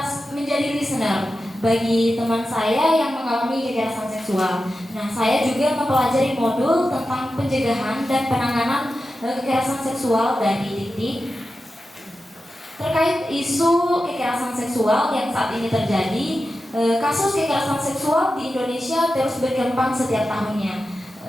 menjadi listener bagi teman saya yang mengalami kekerasan seksual. Nah, saya juga mempelajari modul tentang pencegahan dan penanganan kekerasan seksual dari Dikti. Terkait isu kekerasan seksual yang saat ini terjadi, kasus kekerasan seksual di Indonesia terus berkembang setiap tahunnya.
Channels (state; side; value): normal; both; correlation 0.92